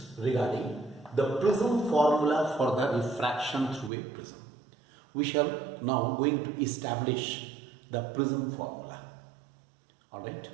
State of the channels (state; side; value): drops out; left; at 3.9 s